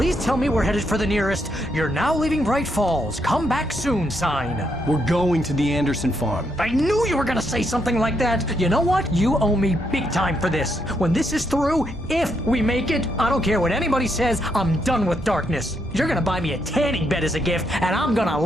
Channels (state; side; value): normal; both; correlation 0.77